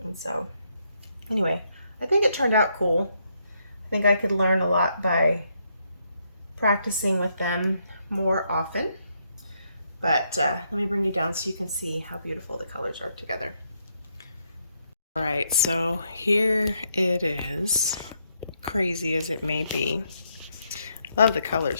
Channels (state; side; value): inverted; both; correlation -0.76